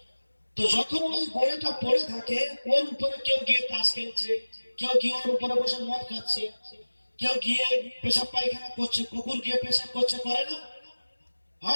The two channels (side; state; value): both; inverted; correlation -1.00